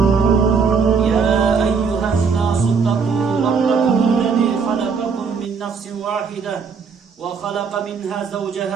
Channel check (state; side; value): quieter; left; 5.6 dB